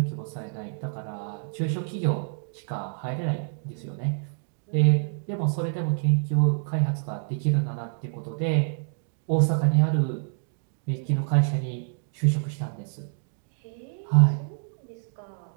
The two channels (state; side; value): silent; left; digital silence